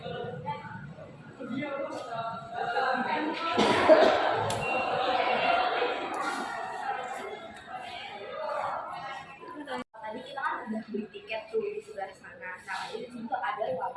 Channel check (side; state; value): both; identical; correlation 1.00